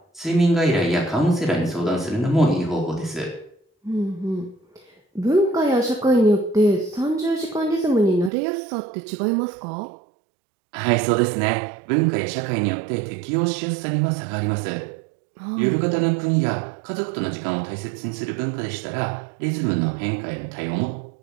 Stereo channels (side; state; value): left; drops out; at 8.3 s